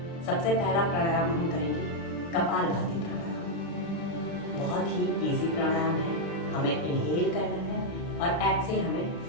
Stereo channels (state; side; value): late; right; 36 ms